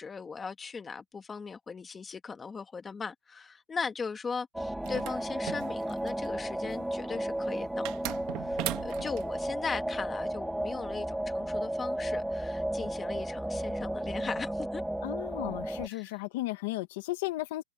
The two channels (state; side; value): normal; both; correlation 0.80